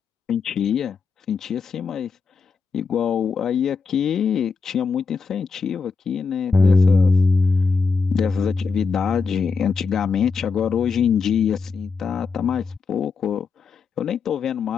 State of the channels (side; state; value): right; quieter; 5.0 dB